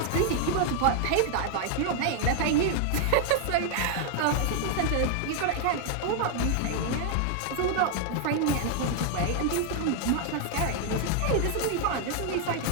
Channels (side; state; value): both; different; correlation 0.00